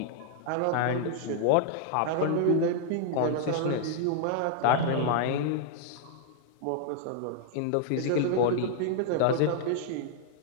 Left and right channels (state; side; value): different; both; correlation -0.01